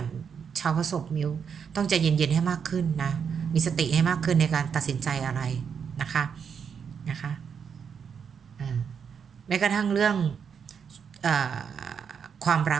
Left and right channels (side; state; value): left; quieter; 6.9 dB